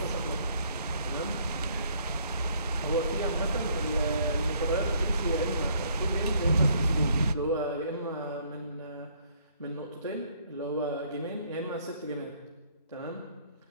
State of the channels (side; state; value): both; inverted; correlation -0.64